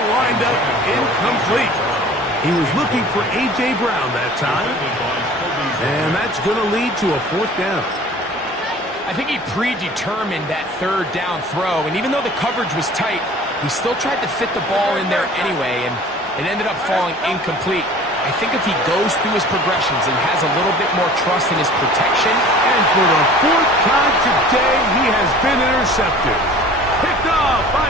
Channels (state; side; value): normal; both; correlation 0.45